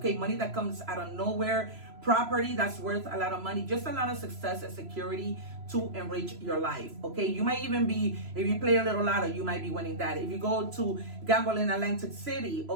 Money that comes out of nowhere. Property that's worth a lot of money, just a lot of success and security to enrich your life. Okay, you might even be, if you play a little lotto, you might be winning that. If you go to gamble in Atlantic City,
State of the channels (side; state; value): left; late; 3.0 ms